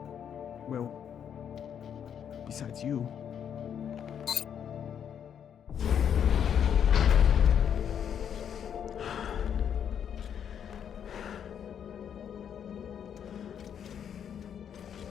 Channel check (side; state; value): right; quieter; 8.5 dB